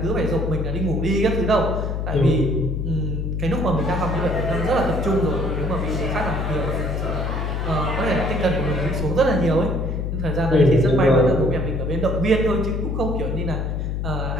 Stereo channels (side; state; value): left; noise; hum, 1 dB below the sound